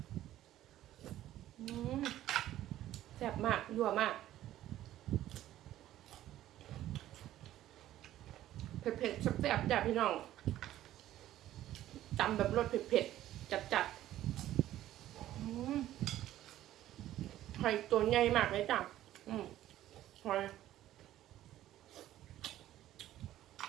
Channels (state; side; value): quieter; left; 13.4 dB